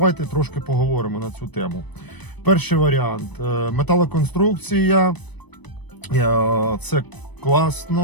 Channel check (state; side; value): late; right; 1.0 ms